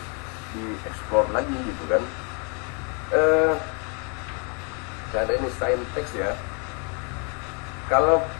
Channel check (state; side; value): quieter; right; 36.6 dB